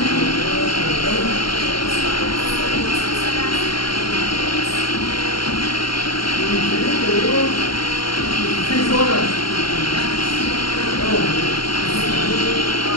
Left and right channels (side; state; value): right; late; 0.73 ms